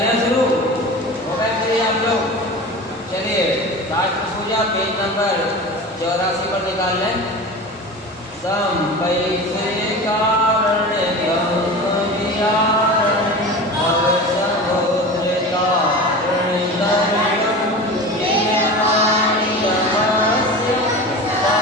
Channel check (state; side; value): normal; both; correlation 0.32